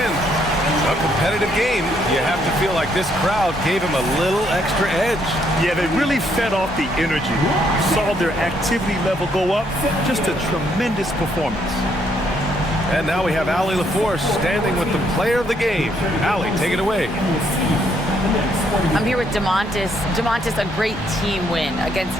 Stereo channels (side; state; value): both; normal; correlation 0.71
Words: A competitive game. You have to feel like this crowd gave him a little extra edge. Yeah, they really fed off the energy. You saw their activity level go up. Just a tremendous performance. And now we have Allie LaForce standing with the player of the game. Allie, take it away. I'm here with Domantas. Domantas, a great team win against